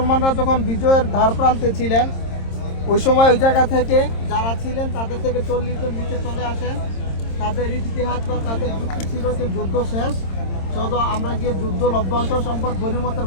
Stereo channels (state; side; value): late; right; 26 ms